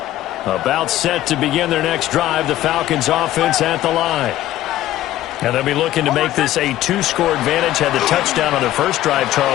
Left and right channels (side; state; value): right; quieter; 14.1 dB